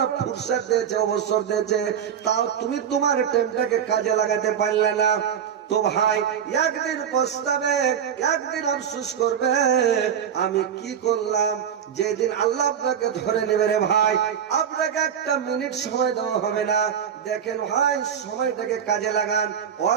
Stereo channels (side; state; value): left; quieter; 8.4 dB